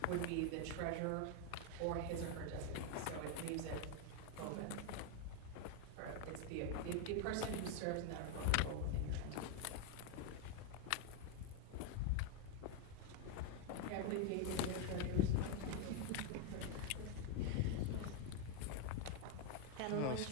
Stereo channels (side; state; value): both; different; correlation 0.01